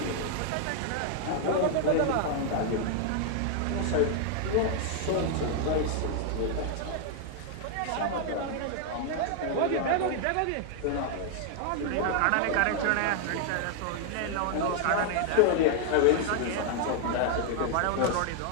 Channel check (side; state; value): both; different; correlation 0.00